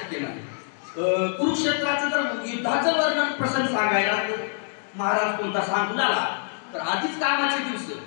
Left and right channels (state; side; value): silent; right; 62 dB below the other